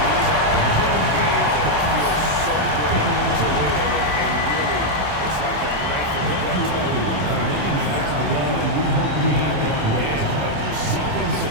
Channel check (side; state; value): left; late; 27 ms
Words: are those games that feel so great to win, and really, it's like a knife in the gut to lose. You gotta love being on the edge of your seat and just